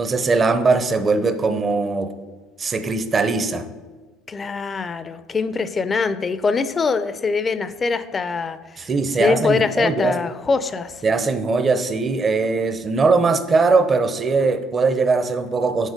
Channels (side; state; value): both; normal; correlation 0.77